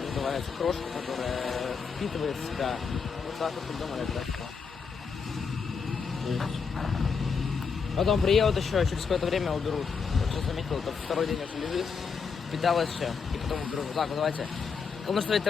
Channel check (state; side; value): quieter; right; 5.6 dB